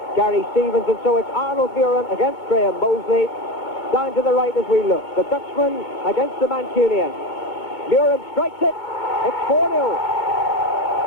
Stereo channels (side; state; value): right; late; 2.2 ms